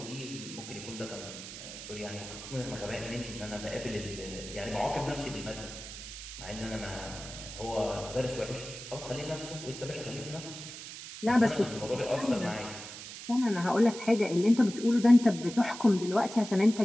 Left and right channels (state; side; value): noise; right; hiss, 11 dB below the sound